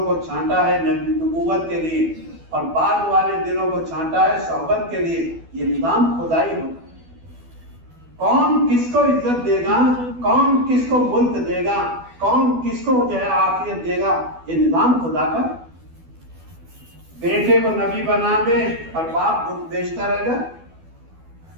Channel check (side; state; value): left; late; 12 ms